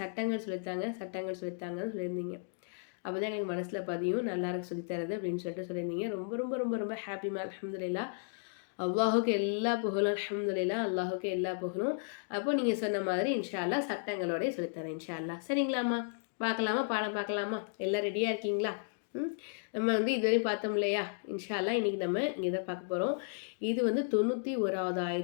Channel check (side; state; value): right; silent; digital silence